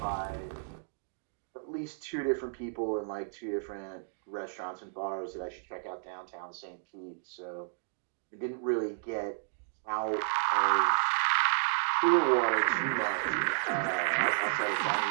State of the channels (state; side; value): silent; left; digital silence